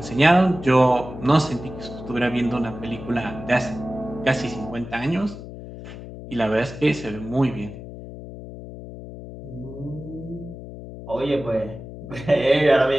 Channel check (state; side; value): noise; left; hum, 12 dB below the sound